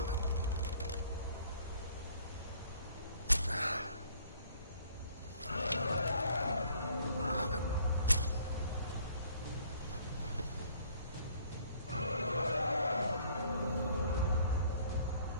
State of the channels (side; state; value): both; inverted; correlation -0.58